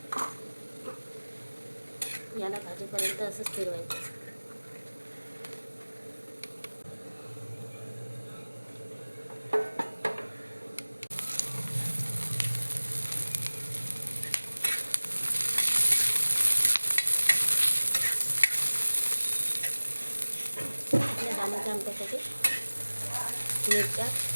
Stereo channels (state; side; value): inverted; both; correlation -1.00